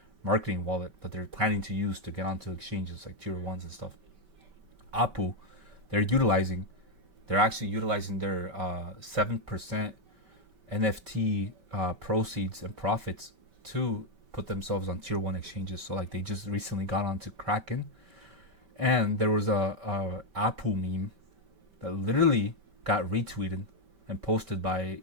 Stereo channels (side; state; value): left; late; 5.2 ms